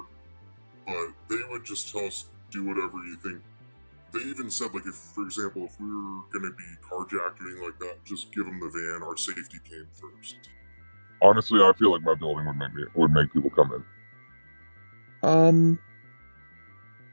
but they would just tell us, do whatever you think. They even said, like, if, for example, if we were going to be carjacked or anything like that, just give them the van. Our safety came first. Honestly, I feel like my building would make people come in.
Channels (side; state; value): both; inverted; correlation -1.00